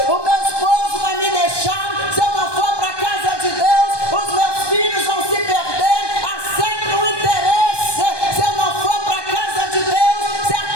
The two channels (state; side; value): late; right; 1.2 ms